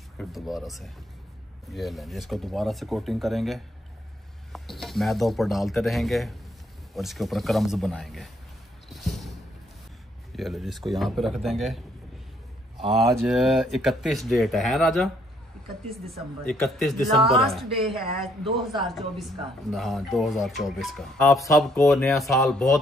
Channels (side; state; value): both; normal; correlation 0.69